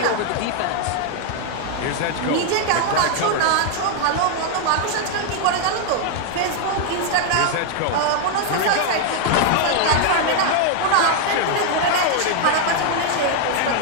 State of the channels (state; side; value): different; both; correlation 0.00